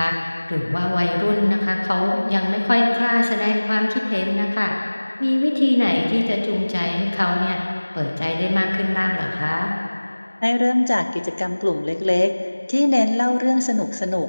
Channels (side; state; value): both; inverted; correlation -1.00